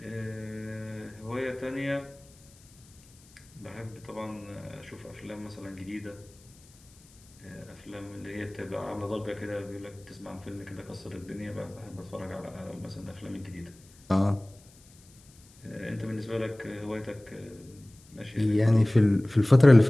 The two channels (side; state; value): left; noise; hiss, 26 dB below the sound